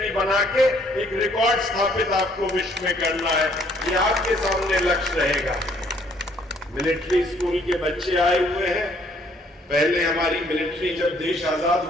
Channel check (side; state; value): both; normal; correlation 0.64